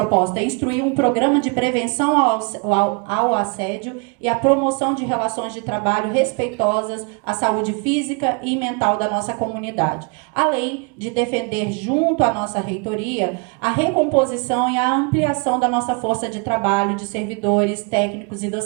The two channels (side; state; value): left; quieter; 33.5 dB